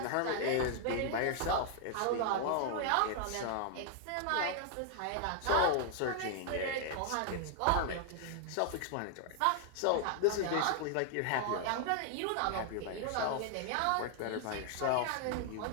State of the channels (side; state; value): both; different; correlation 0.00